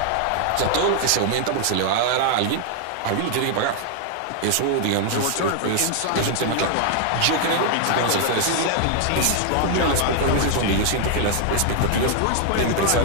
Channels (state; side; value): different; both; correlation 0.00